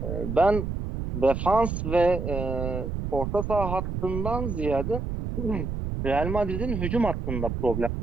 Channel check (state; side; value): noise; right; rumble, 4 dB below the sound